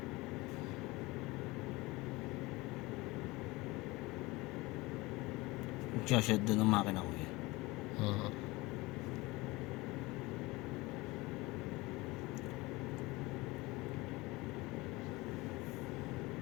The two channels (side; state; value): right; quieter; 22.0 dB